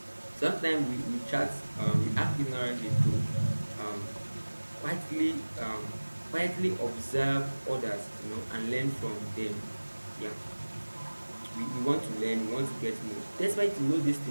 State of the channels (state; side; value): inverted; both; correlation -1.00